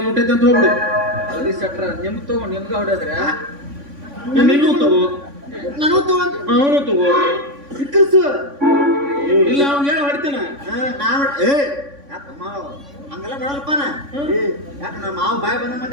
ಮುಟ್ಟೈತೆ ಅಂತ ಹೋಗ್ಬಿಡು. ಅಲ್ರಿ ಶೆಟ್ರ ನಿಮ್ಗೆ ತಗೊಂಡು ನಿಮ್ಗೆ ಹೊಡೆದ್ರೆ ನೀನು ತಗೋ, ನಾನು ತಗೊಂಡು ಅವನು ತಗೋ. ಸಿಕ್ಕಲ್ಸು ಇಲ್ಲ ಅವ್ನು ಹೇಳ ಹೊಡಿತೇನ. ನಾವು ಹಂಗೆಲ್ಲ ಬಿಡಲ್ಲಪ್ಪ ನಾ. ಯಾಕೆ ನಮ್ಮ ಮಾವು ಬಾಯಿ ಬಂದ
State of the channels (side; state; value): left; late; 3.5 ms